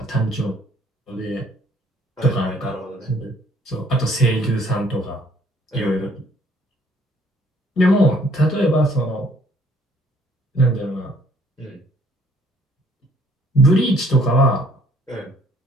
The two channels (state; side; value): normal; both; correlation 0.62